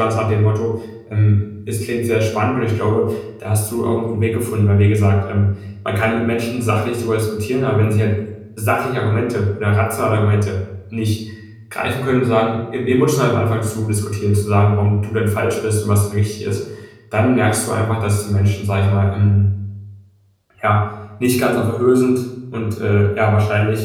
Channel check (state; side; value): identical; both; correlation 1.00